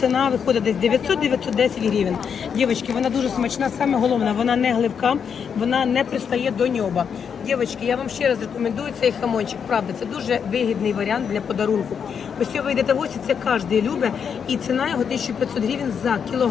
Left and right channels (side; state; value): right; quieter; 7.1 dB